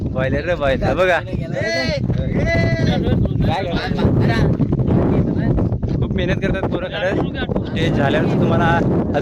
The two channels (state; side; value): identical; both; correlation 1.00